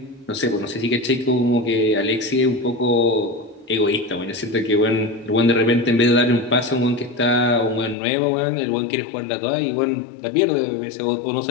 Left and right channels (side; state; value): right; drops out; at 8.0 s